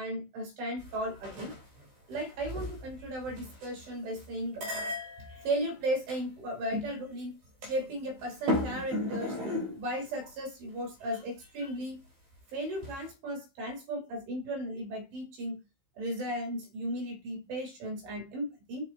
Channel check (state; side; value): late; left; 15 ms